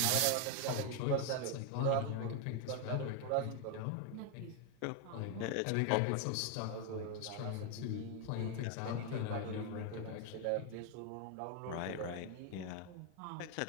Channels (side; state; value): both; different; correlation 0.01